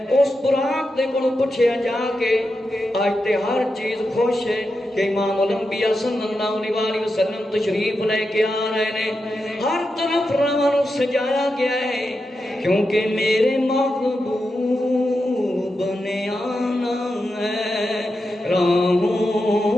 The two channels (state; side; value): normal; both; correlation 0.88